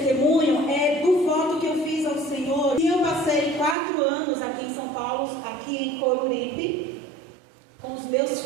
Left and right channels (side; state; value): left; drops out; at 3.8 s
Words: é do voto que eu fiz ao Senhor. E eu passei 4 anos aqui em São Paulo, aqui em Coruripe, com os meus